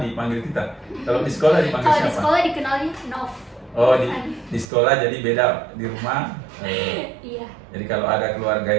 dipanggil Tita. Kalau di sekolah dipanggil siapa? Kalau di sekolah dikenalnya Nov. Oh, di sekolah jadi beda, di rumah. Iya. Jadi kalau ada keluarga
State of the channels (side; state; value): left; drops out; at 4.7 s